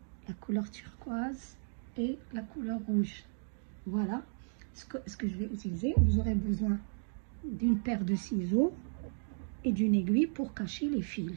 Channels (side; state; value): left; silent; digital silence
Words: la couleur turquoise et la couleur rouge. Voilà ce que je vais utiliser. Vous aurez besoin d'une paire de ciseaux et d'une aiguille pour cacher les